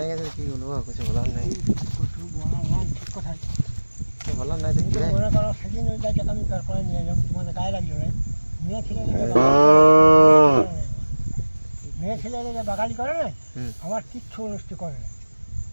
গেছে, কি বলবো, কিছু বলার নেই, বলার নাই। দেখি সেদিন ওই গাছটা আমি তারপরে নিয়ে এলাম, তোমাদের গায়ে লাগলো না, মেয়ে ছেলে বাগালি করে না, আমার কিচ্ছু অনুষ্ঠি করে না,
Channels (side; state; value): both; inverted; correlation -1.00